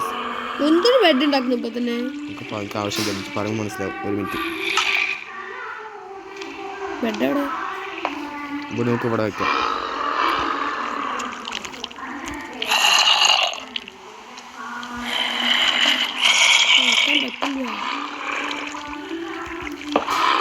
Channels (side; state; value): both; identical; correlation 1.00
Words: എന്തൊരു ബെഡ് ഉണ്ടാക്കുന്നു ഇപ്പൊ തന്നെ? നമുക്ക് ആവശ്യമില്ല, പറയുമ്പോൾ മനസ്സിലാവും. ഒരു മിനിറ്റ്. ബെഡ് എവിടെ? ഇവിടെ നമുക്ക് ഇവിടെ വെക്കാം.